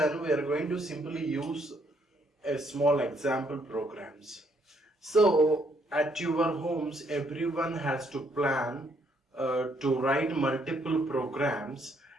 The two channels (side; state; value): both; normal; correlation 0.70